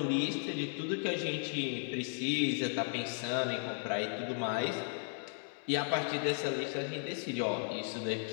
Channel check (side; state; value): right; silent; 54 dB below the other